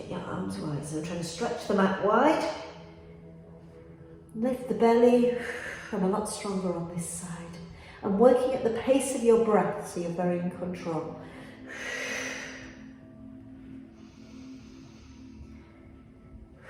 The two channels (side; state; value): both; identical; correlation 1.00